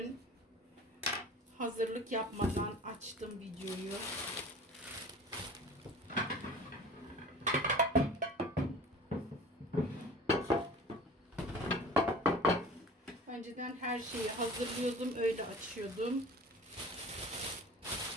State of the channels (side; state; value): both; normal; correlation 0.41